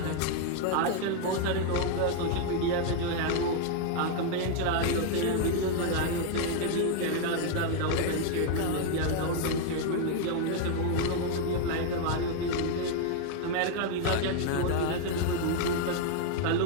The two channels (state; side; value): different; both; correlation 0.00